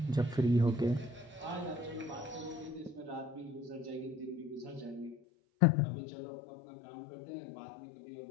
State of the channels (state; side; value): drops out; right; at 5.2 s